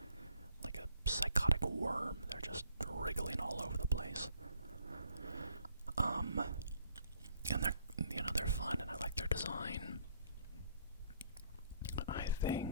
psychotic worm. They're just wriggling all over the place. And they're fun, and I like their design. I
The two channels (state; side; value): inverted; both; correlation -0.65